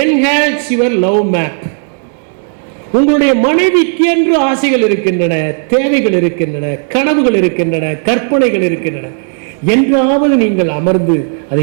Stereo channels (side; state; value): left; silent; 57 dB below the other